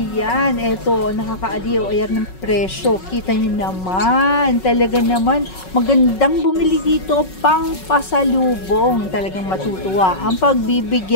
eto, nakakaaliw. Ayan ng presyo. Kita nyo naman. Talaga naman, magandang bumili dito pang pasalubong. Talagang matutuwa ang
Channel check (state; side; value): late; right; 5.4 ms